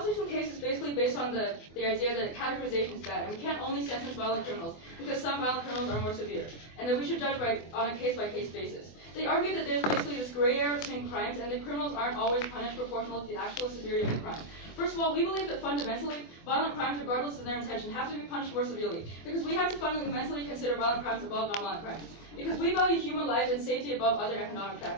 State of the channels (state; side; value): late; right; 24 ms